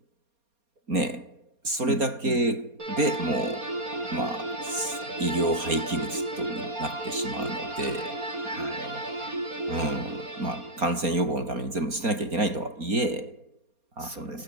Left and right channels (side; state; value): left; late; 4.3 ms